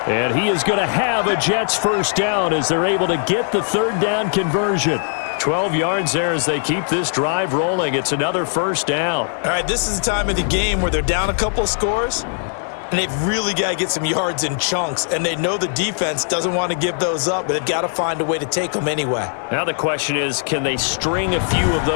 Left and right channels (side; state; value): right; silent; 65 dB below the other